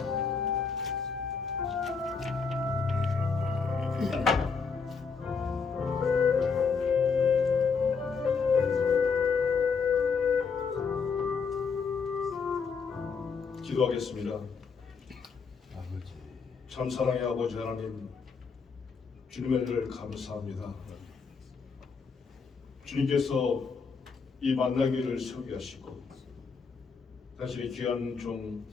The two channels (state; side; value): quieter; right; 5.3 dB